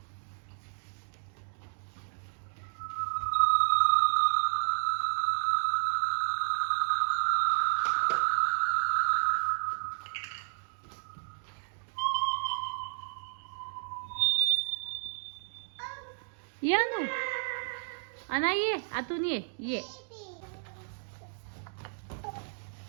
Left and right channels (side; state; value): left; silent; digital silence